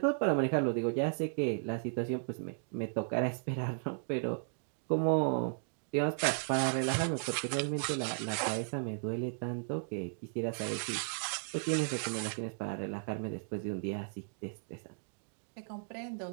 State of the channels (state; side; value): silent; left; digital silence